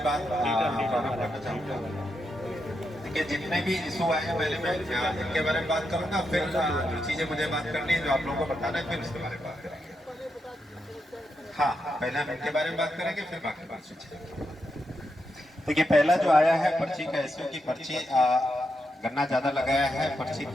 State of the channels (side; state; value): both; normal; correlation 0.84